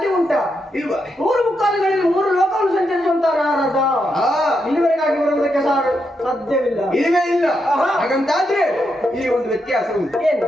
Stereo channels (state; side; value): normal; both; correlation 0.83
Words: ಉಂಟಾ ಇಲ್ವಾ 3 ಮುಕ್ಕಾಲುಗಳಲ್ಲಿ 3 ಲೋಕವನ್ನು ಸಂಚರಿಸುವಂತ ನಾರದ ಇಲ್ಲಿವರೆಗಾಗಿ ಬರುವುದಕ್ಕೆ ಸಾಧ್ಯವಿಲ್ಲ ಇಲ್ಲವೇ ಇಲ್ಲ ಹಾಗಂತಾದ್ರೆ ಇಲ್ಲಿ ಒಂದು ವ್ಯತ್ಯಾಸ ಉಂಟು